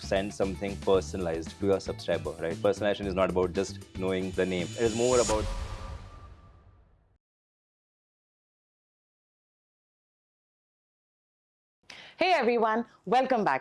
something personalized to your subscriber, right? Personalization is not about just knowing the name. It is more about Hey everyone, welcome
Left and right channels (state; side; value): identical; both; correlation 1.00